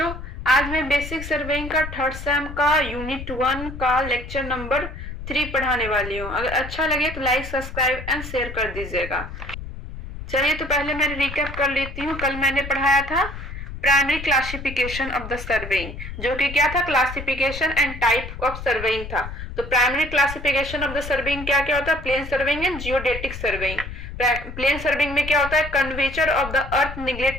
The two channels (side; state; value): left; noise; rumble, 10 dB below the sound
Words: आज मैं बेसिक सर्वेइंग का थर्ड सेम का यूनिट 1 का लेक्चर नंबर 3 पढ़ाने वाली हूँ। अगर अच्छा लगे तो लाइक सब्सक्राइब एंड शेयर कर दीजिएगा। चलिए तो पहले मैं रिकैप कर लेती हूँ। कल मैंने पढ़ाया था primary classification of the surveying, जो कि क्या था, classification and type of surveying था। तो primary classification of the surveying क्या क्या होता है, plane surveying and geodetic surveying. Plane surveying में क्या होता है, curvature of the earth